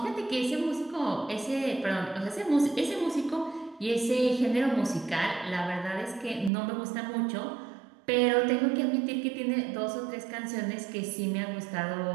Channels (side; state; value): left; drops out; at 6.5 s